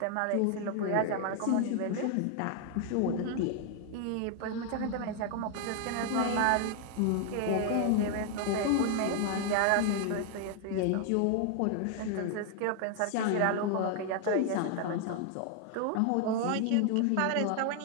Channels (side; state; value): both; different; correlation 0.00